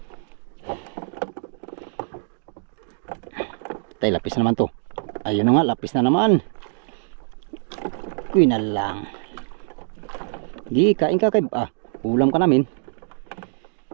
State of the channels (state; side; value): silent; left; digital silence